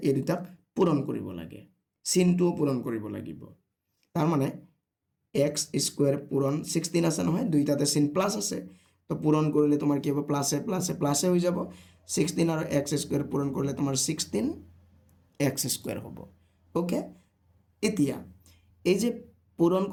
এই দুটাক পূৰণ কৰিব লাগে চিনটো পূৰণ কৰিব লাগিব তাৰ মানে x স্কয়াৰ পূৰণ 16 আছে নহয় দুইটাতে চিন প্লাস আছে তো পূৰণ কৰিলে তোমাৰ কি হ'ব প্লাসে প্লাসে প্লাসে হৈ যাব 16 আৰু x স্কয়াৰ পূৰণ কৰিলে তোমাৰ 16 x স্কয়াৰ হ'ব ওকে এতিয়া এই যে পূৰণ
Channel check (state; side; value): identical; both; correlation 1.00